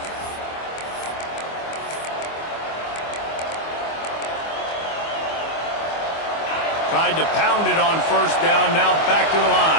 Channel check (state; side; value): late; right; 24 ms